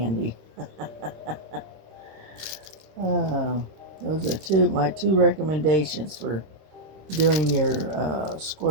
Those are my two recommendations for doing your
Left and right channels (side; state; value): left; late; 26 ms